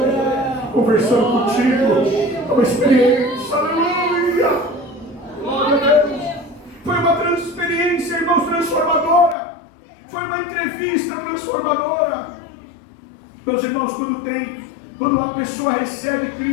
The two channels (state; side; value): drops out; right; at 9.3 s